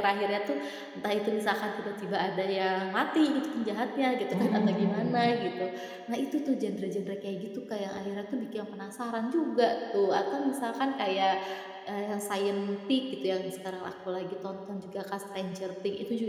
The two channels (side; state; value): both; identical; correlation 1.00